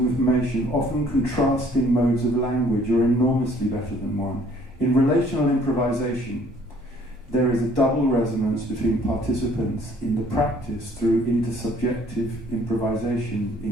often contrasting modes of language, are enormously better than 1. In relational improvisation, there is a double resonance between participants in the practice through intersubjective improvisation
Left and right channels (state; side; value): normal; both; correlation 0.59